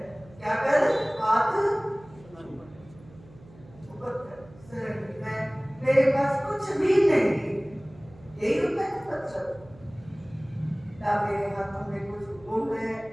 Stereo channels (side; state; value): right; noise; hum, 23 dB below the sound